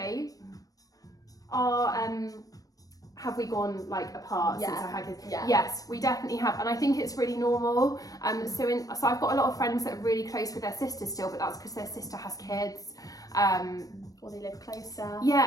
have we gone like apart since I had kids? Yeah. Yes, we definitely have, and I think it's really normal. So I've got a lot of friends that are really close with their sisters still, but that's because their sister has kids. Or they live closer.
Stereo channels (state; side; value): late; right; 0.18 ms